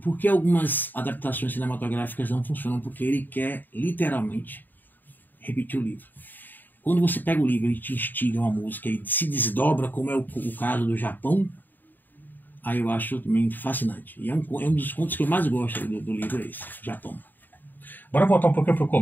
algumas adaptações cinematográficas não funcionam, porque ele quer literalmente repetir o livro. Quando você pega o livro e te instiga uma música e se desdobra, como é o caso do Japão, aí eu acho também fascinante. E é um dos contos que eu mais gosto do livro, é esse, Japão. Bora voltar um pouquinho para o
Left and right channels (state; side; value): late; right; 0.090 ms